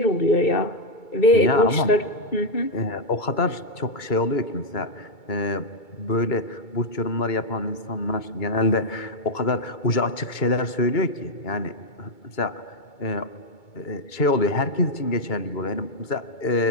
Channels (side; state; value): right; late; 2.2 ms